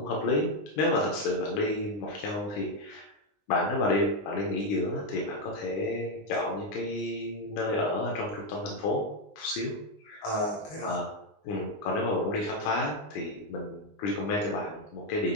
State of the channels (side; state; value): right; late; 19 ms